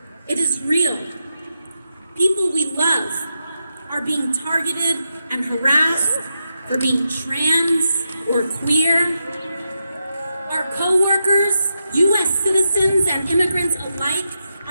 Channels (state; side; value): inverted; both; correlation -0.87